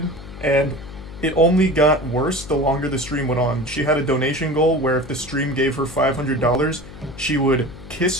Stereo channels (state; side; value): noise; left; hum, 15 dB below the sound